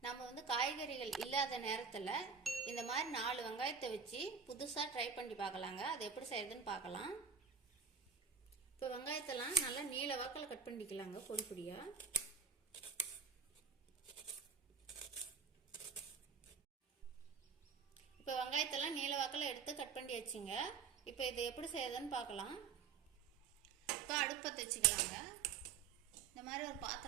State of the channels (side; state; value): left; quieter; 6.2 dB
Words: நம்ம காய்கறிகள் இல்லாத நேரத்தில் இந்த மாதிரி 4 வெங்காயத்தை வச்சு புதுசாக ட்ரை பண்ணி பார்க்கலாங்க. அது எப்படி செய்யறதுன்னு பார்க்கலாம். இப்போ வெங்காயத்தெல்லாம் நல்லா நீல வாக்கில் கட் பண்ணிக்கலாங்க, பொடி பொடியாக. இப்போ வெங்காயத்தெல்லாம் நீல வாக்கில் எடுத்து கட் பண்ணி வச்சுங்க. இப்போ இது எப்படி செய்யறதுன்னு பார்க்கலாம். இப்போ அடுப்பத்தை வச்சுக்கலாங்க. இந்த மாதிரி ஒரு